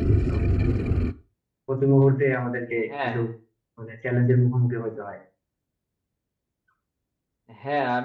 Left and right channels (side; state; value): both; identical; correlation 1.00